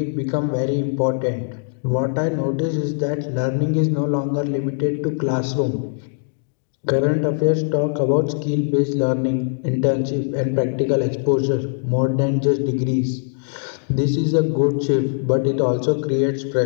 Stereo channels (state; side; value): silent; right; digital silence